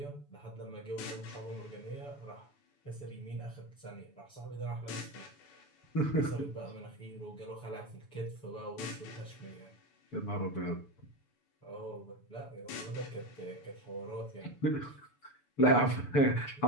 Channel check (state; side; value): late; right; 6.9 ms